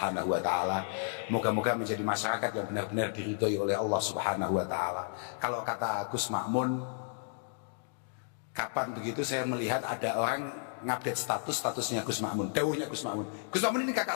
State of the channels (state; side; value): silent; right; digital silence